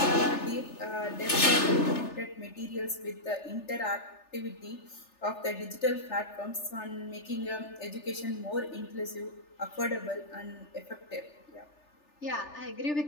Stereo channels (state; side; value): late; right; 3.4 ms